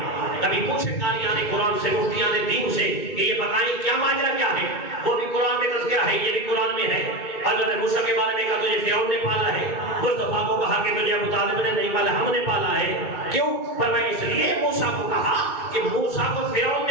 کبھی پوچھے قاریان قرآن سے، مفتیان دین سے کہ یہ بتائیں کیا ماجرا کیا ہے؟ وہ بھی قرآن میں تذکرہ ہے، یہ بھی قرآن میں ہے. حضرت موسیٰ کے بارے میں کہا تجھے فرعون نے پالا ہے. مصطفیٰ کو کہا کہ تجھے ابو طالب نے نہیں پالا، ہم نے پالا ہے. کیوں؟ فرمایا اس لیے موسیٰ کو کہا کہ موسیٰ کو فرعون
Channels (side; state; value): right; late; 2.3 ms